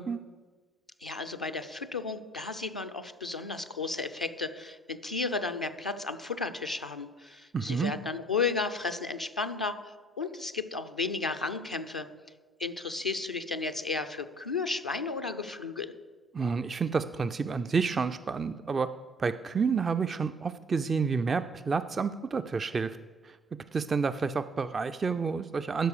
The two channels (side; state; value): both; normal; correlation 0.57